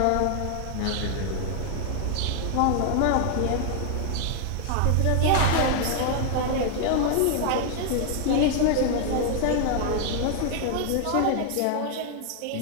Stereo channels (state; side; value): different; both; correlation 0.00